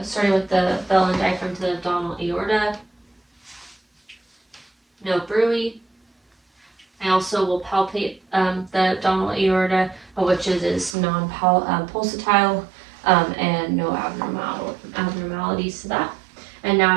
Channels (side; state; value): left; drops out; at 11.0 s